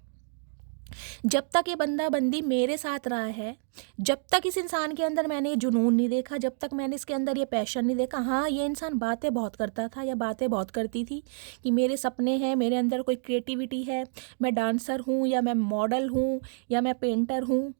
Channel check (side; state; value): left; silent; digital silence